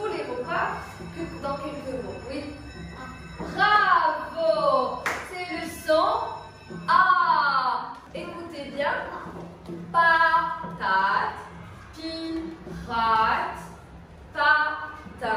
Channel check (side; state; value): both; identical; correlation 1.00